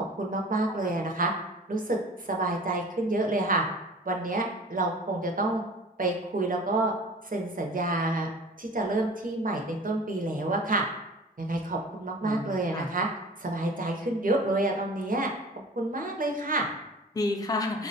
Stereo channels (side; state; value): both; normal; correlation 0.43